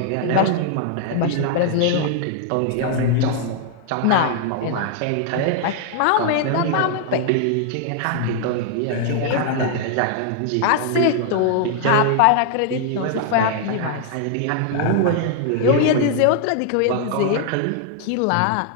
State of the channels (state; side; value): different; both; correlation 0.00